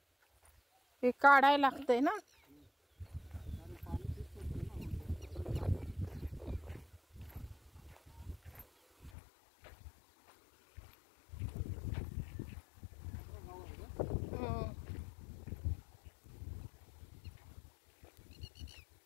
हे काढायला लागतंय ना. आणि पाणी तेच पडतं ना.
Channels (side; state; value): right; drops out; at 9.1 s